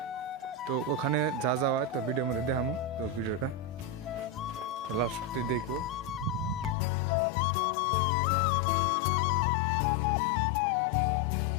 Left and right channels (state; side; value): drops out; right; at 6.8 s